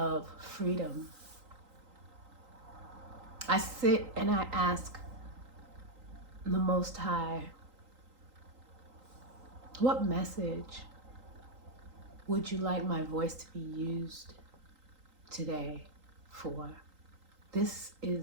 freedom. I sit and I ask the Most High, what message would you like my voice to be used today for? This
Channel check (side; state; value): left; late; 3.8 ms